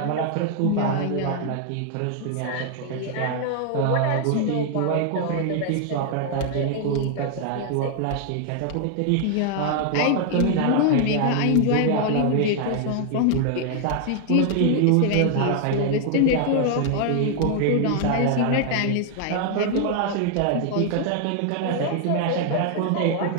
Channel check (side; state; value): both; different; correlation 0.00